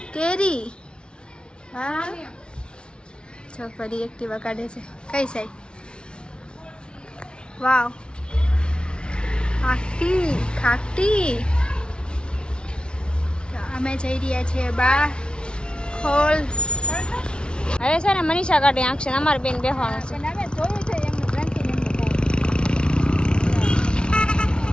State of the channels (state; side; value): late; right; 0.056 ms